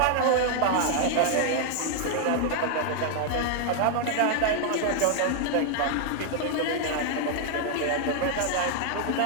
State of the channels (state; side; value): different; both; correlation 0.00